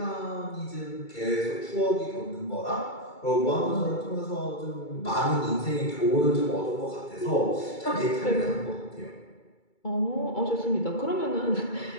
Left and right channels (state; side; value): late; right; 2.3 ms